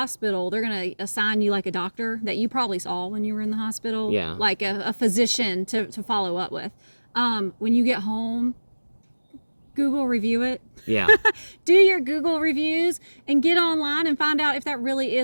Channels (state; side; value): inverted; both; correlation -1.00